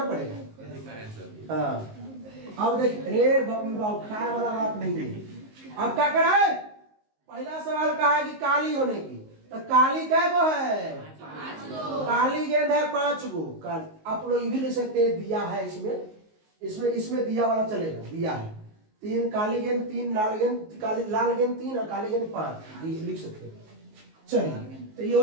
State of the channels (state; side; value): late; left; 19 ms